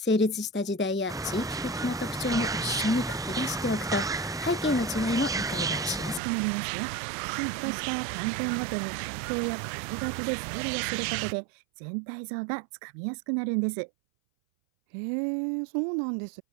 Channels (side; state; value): left; drops out; at 6.2 s